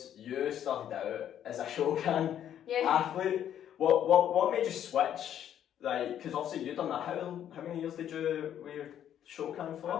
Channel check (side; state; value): right; quieter; 10.2 dB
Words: you started out as a Shokan athlete. What made you switch? Because obviously you've done that. How many years did you wear Shokan for?